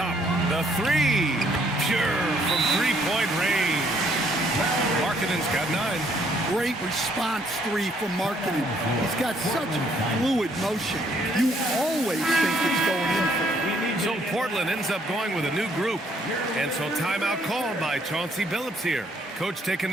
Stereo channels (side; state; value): both; normal; correlation 0.67